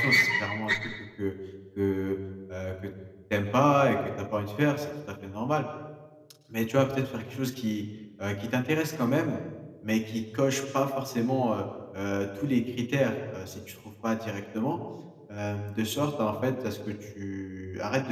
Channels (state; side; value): identical; both; correlation 1.00